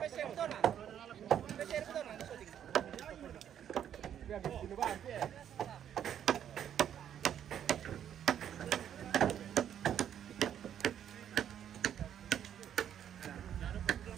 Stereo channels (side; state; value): left; quieter; 9.7 dB